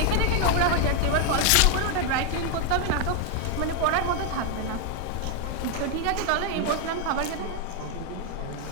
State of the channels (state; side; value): different; both; correlation 0.01